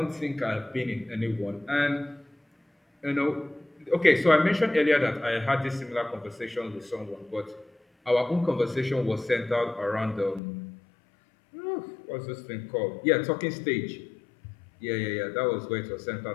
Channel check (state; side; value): drops out; right; at 10.4 s